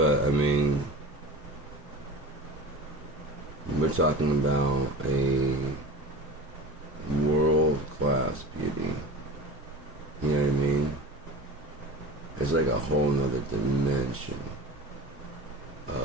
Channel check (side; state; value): both; normal; correlation 0.34